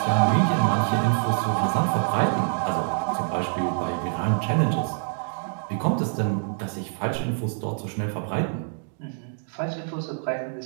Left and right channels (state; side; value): silent; left; 61 dB below the other